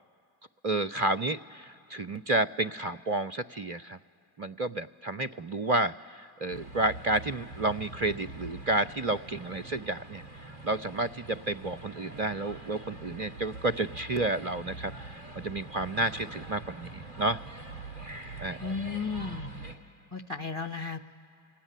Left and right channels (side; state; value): left; late; 2.4 ms